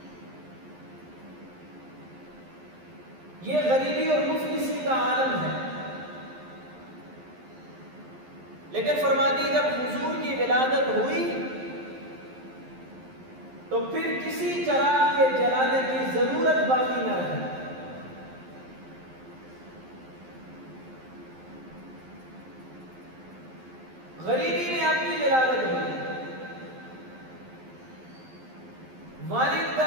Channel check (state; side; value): late; left; 11 ms